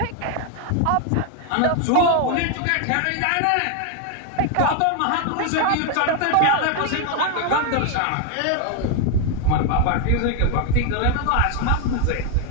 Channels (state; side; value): different; both; correlation 0.01